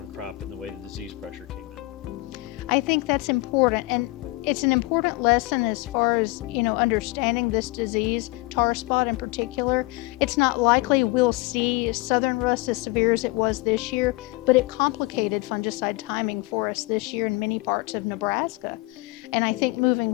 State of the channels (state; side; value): quieter; right; 22.2 dB